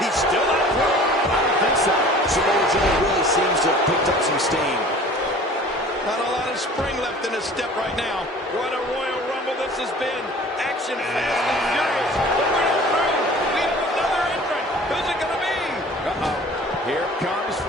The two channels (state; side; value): normal; both; correlation 0.46